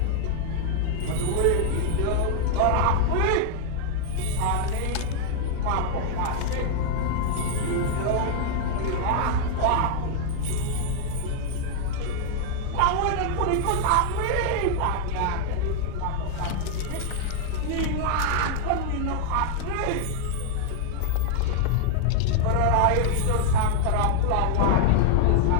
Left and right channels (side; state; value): both; different; correlation 0.00